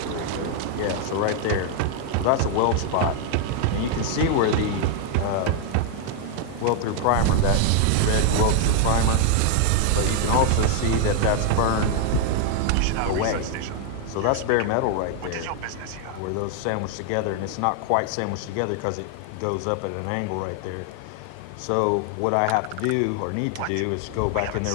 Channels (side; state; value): both; different; correlation 0.00